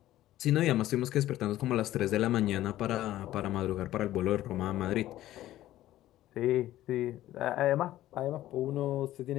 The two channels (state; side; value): quieter; right; 14.3 dB